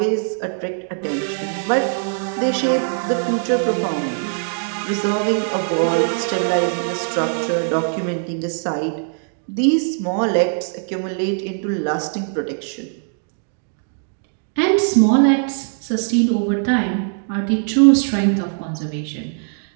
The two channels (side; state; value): left; silent; digital silence